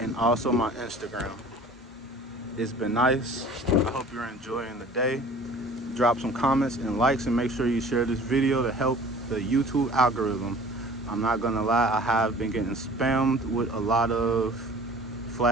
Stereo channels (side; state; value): both; normal; correlation 0.46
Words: also my Instagram. It's been nice. I hope you're enjoying the day. Drop some comments and likes, and make sure you share this video to help the YouTube algorithm. I'm not gonna lie, I have been getting spammed with a lot of